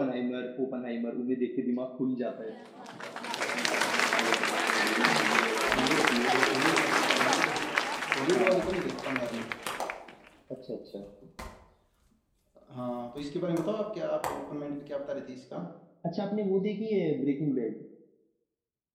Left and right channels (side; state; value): both; identical; correlation 1.00